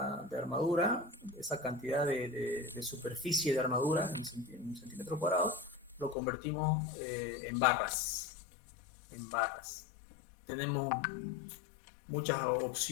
armadura, esa cantidad de superficie de armadura en centímetros cuadrados, lo convertimos en barras. En barras. Tenemos muchas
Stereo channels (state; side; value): drops out; right; at 6.2 s